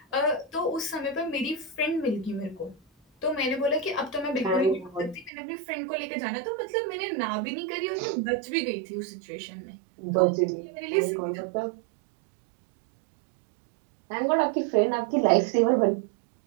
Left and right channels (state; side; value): drops out; left; at 5.3 s